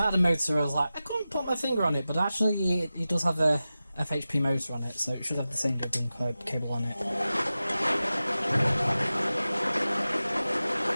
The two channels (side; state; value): both; inverted; correlation -0.94